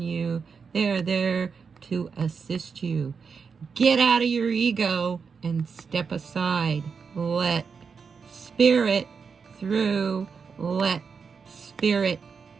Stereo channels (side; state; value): left; quieter; 5.7 dB